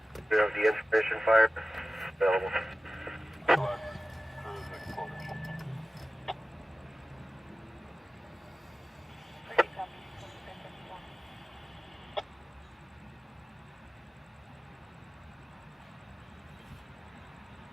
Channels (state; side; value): normal; both; correlation 0.96